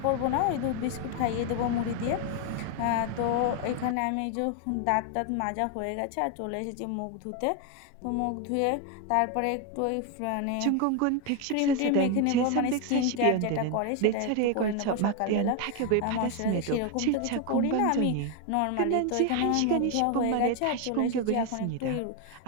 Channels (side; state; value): both; different; correlation 0.01